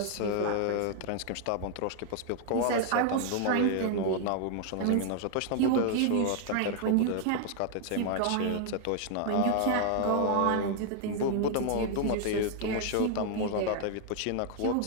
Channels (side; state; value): both; different; correlation 0.00